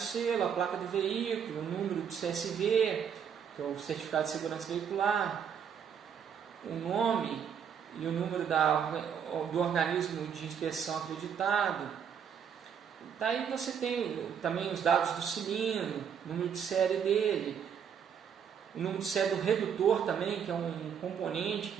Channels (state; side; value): quieter; left; 7.7 dB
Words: a placa do veículo, o número do CSV, que é o Certificado de Segurança Veicular, o nome e o número do organismo de inspeção acreditado. Daí você tem também os dados do cilindro, o número de série dele, o número de série do redutor também, que é um componente